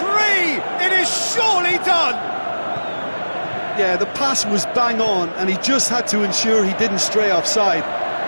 It is surely done. Yeah, the pass was bang on, and he just had to ensure he didn't stray offside.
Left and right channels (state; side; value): inverted; both; correlation -1.00